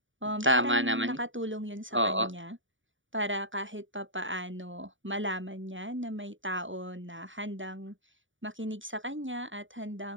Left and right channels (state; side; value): late; left; 0.56 ms